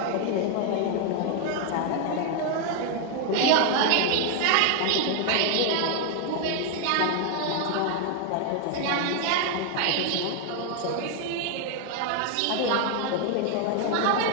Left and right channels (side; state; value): both; different; correlation 0.00